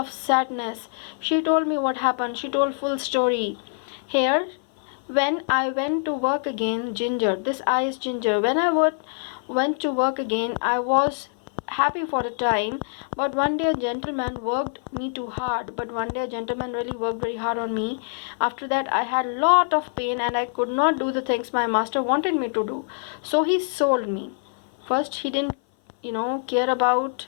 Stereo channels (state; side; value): silent; right; 56 dB below the other